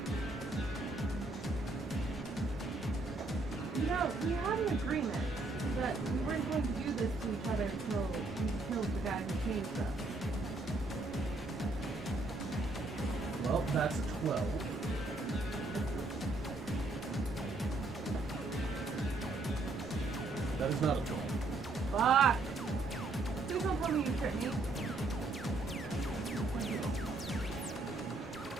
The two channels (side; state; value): left; quieter; 3.1 dB